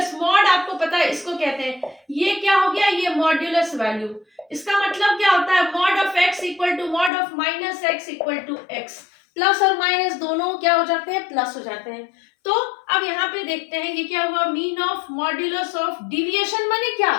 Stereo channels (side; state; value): right; drops out; at 7.1 s